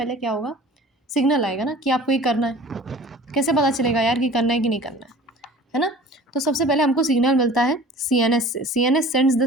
क्या होगा? सिग्नल आएगा ना कि आपको ये करना है। कैसे पता चलेगा यार कि करना है कि नहीं करना है ना? तो सबसे पहले हमको सिग्नल मिलता है CNS से। CNS सेंड्स द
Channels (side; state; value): both; normal; correlation 0.44